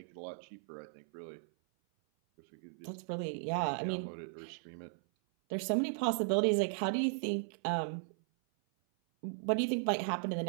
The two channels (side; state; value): left; silent; 53 dB below the other